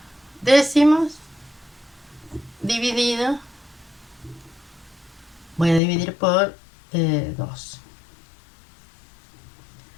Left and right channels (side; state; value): right; drops out; at 5.8 s